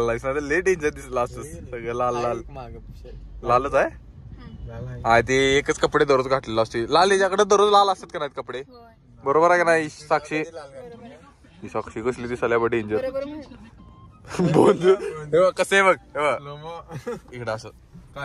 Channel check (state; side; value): identical; both; correlation 1.00